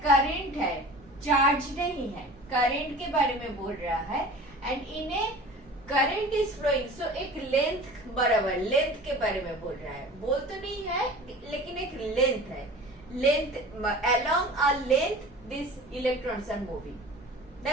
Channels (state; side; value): noise; right; rumble, 25 dB below the sound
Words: करंट है, चार्ज नहीं है. करंट के बारे में बोल रहा है and in a current is flowing, so एक लेंथ बराबर लेंथ के बारे में बोल रहा है. बोल तो नहीं है लेकिन एक लेंथ है. Length along a length this electrons are moving.